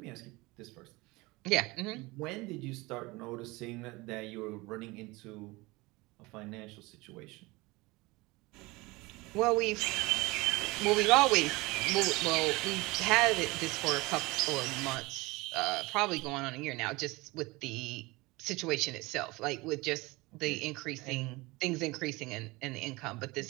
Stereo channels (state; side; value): quieter; left; 22.9 dB